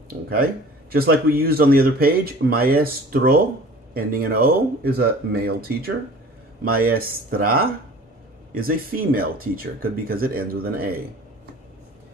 Okay? Just like we used on the other page, maestro, ending in O, is a male teacher. Maestra is a female teacher, because it ends with an A.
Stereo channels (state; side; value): normal; both; correlation 0.45